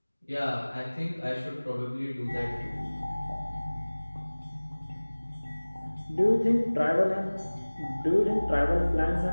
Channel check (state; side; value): inverted; both; correlation -1.00